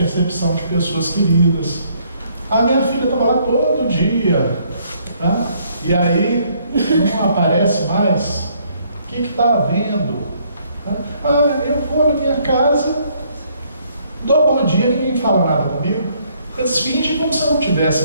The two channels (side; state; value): both; inverted; correlation -0.67